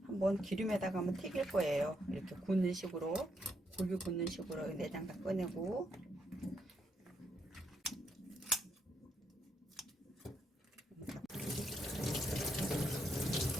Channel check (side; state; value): both; normal; correlation 0.76